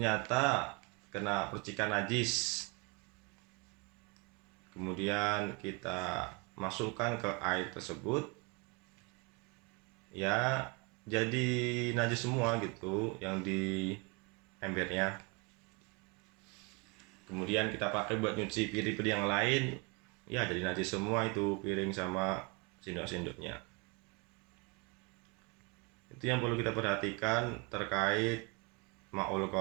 kena percikan najis, kemudian kita masukkan ke air tersebut, ya jadi najis semua gitu yang di embernya. Kemudian kita pakai buat nyuci piring-piring yang lain, ya jadi najis semua itu piring sama sendok-sendoknya. Itu yang perlu kita perhatikan terkait ma'ul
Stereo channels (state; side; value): quieter; left; 28.7 dB